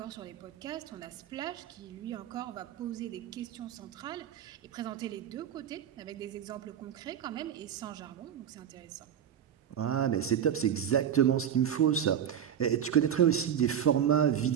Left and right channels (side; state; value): left; quieter; 9.2 dB